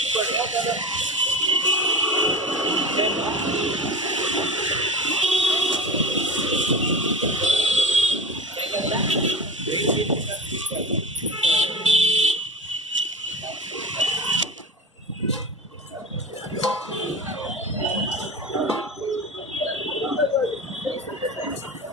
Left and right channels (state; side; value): normal; both; correlation 0.30